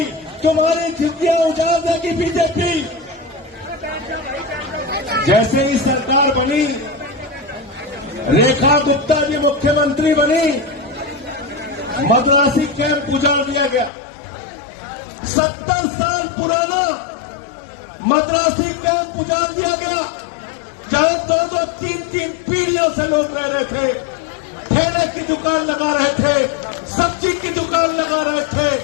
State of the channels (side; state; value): right; drops out; at 13.9 s